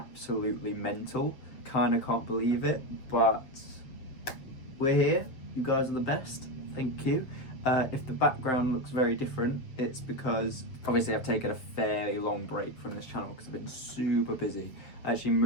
mental. Kind of can't believe it, but we're here. You guys are the best. Thank you. If the background looks very different, it's because obviously I've taken a fairly long break from this channel because I've been super busy. I actually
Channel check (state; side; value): late; right; 7.6 ms